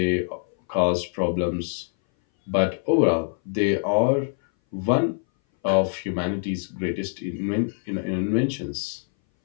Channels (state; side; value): silent; right; 59 dB below the other